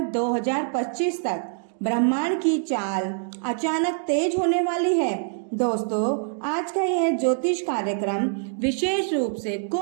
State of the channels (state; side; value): silent; left; 62 dB below the other